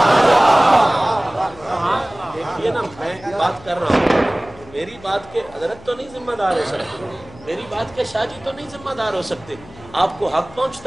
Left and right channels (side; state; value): left; noise; hum, 21 dB below the sound